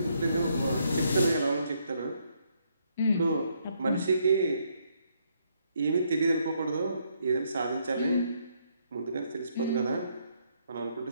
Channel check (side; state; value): both; inverted; correlation -0.73